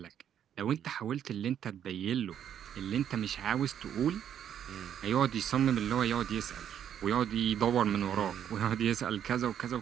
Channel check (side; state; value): left; quieter; 9.5 dB